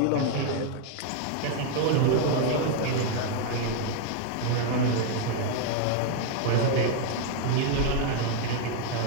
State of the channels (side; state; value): both; different; correlation 0.00